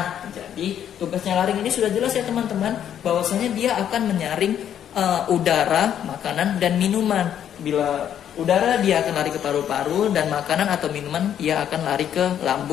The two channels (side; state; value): right; quieter; 9.8 dB